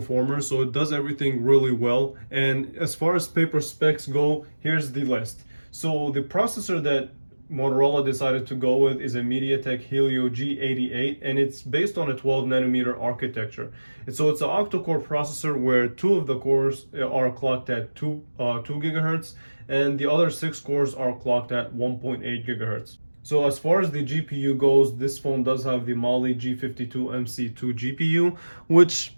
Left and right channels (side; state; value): both; inverted; correlation -1.00